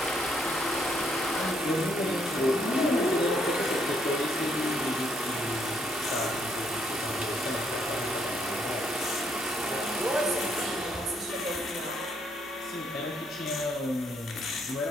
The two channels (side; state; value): both; normal; correlation 0.72